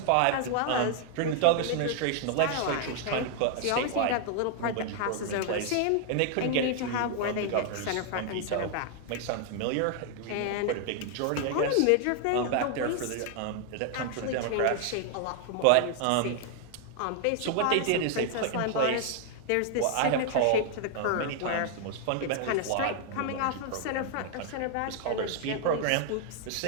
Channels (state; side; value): different; both; correlation 0.00